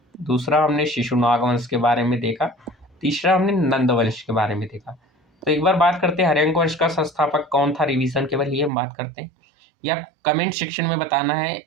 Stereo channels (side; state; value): left; drops out; at 8.7 s